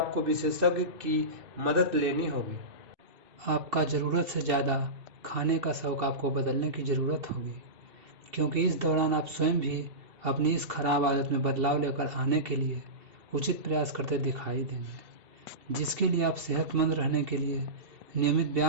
विशेषज्ञ की मदद लेनी होगी। आपका ज़रूरत से ज़्यादा खाने का शौक आपको बदलने की ज़रूरत होगी, क्योंकि इस दौरान आप स्वयं भी अपनी इस खराब आदत में बदलाव लेकर आने के लिए उचित प्रयास करते दिखाई देंगे, जिसके लिए आप सेहतमंद रहने के लिए नियमित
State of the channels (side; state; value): left; late; 2.7 ms